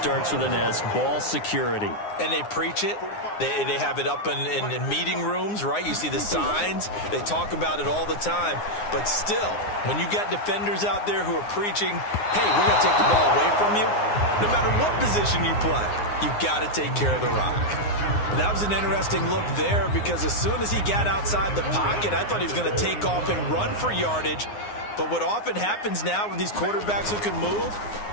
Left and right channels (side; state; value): right; late; 9.7 ms